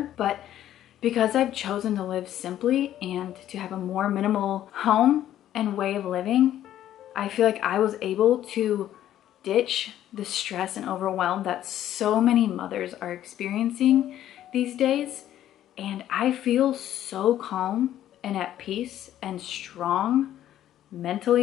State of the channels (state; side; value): quieter; right; 12.0 dB